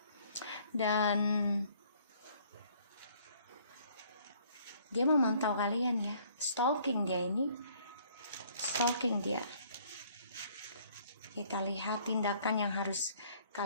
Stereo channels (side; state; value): both; inverted; correlation -0.60